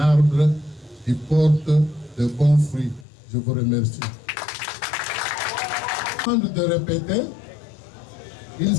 qui porte de bons fruits. Je vous remercie. Avant de répéter, il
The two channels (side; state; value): right; drops out; at 3.1 s